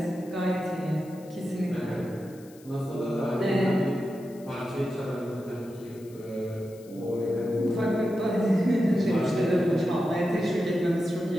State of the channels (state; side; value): noise; left; hiss, 25 dB below the sound